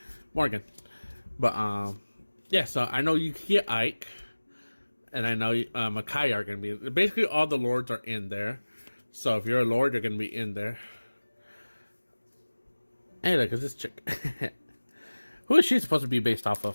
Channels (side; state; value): both; inverted; correlation -1.00